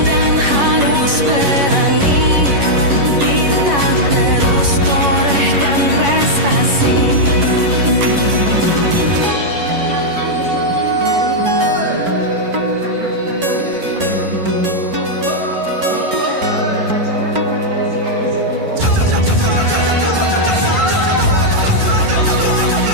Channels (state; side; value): late; left; 11 ms